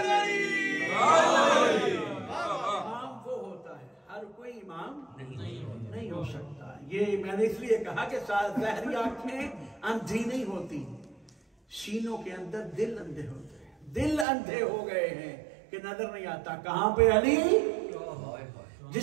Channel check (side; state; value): left; drops out; at 14.2 s